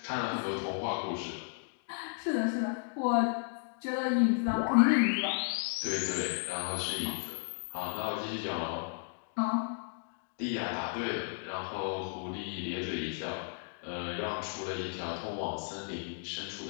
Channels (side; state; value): right; silent; 55 dB below the other